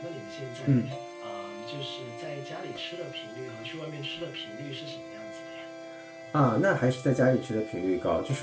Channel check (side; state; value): both; identical; correlation 1.00